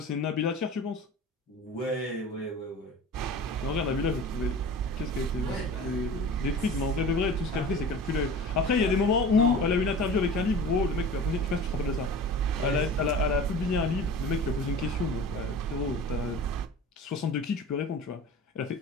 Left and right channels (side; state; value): both; normal; correlation 0.38